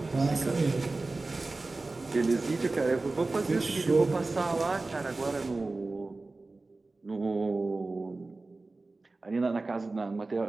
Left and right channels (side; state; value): left; quieter; 3.4 dB